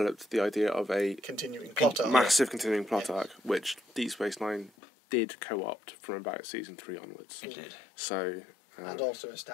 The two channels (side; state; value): right; drops out; at 4.7 s